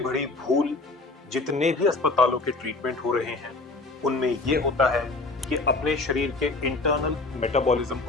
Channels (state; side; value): quieter; right; 3.4 dB